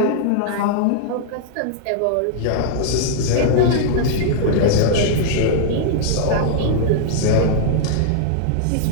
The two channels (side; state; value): both; different; correlation -0.01